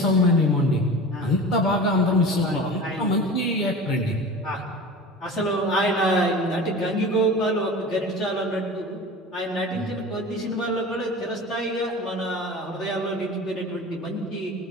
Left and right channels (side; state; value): both; normal; correlation 0.35